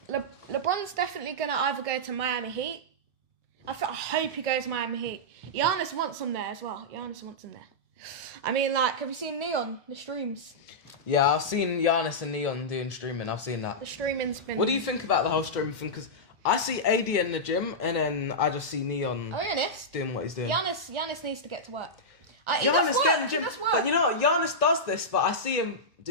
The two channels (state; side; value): normal; both; correlation -0.10